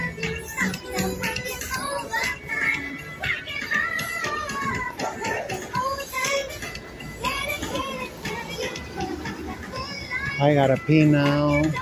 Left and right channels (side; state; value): both; identical; correlation 1.00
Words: I gotta pee now.